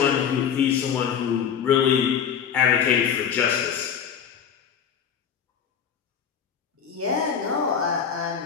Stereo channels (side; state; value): right; quieter; 7.8 dB